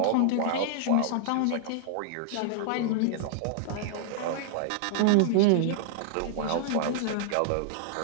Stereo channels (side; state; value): both; different; correlation -0.01